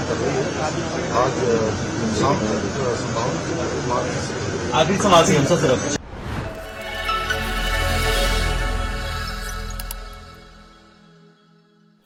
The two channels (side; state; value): both; identical; correlation 1.00